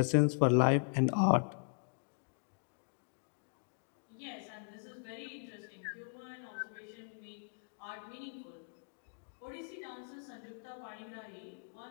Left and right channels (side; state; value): right; silent; digital silence